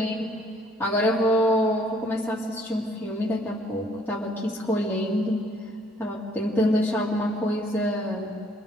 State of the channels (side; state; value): both; normal; correlation 0.63